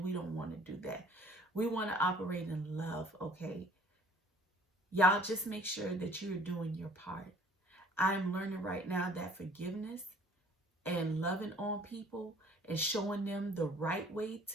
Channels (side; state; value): both; normal; correlation 0.54